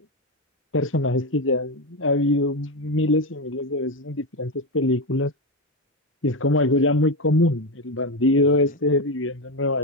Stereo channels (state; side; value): normal; both; correlation 0.12